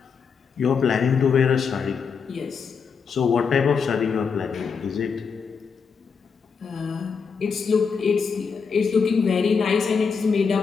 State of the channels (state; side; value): quieter; right; 5.8 dB